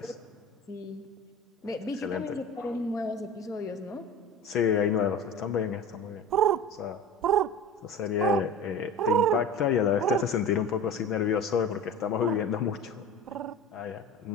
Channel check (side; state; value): both; normal; correlation 0.33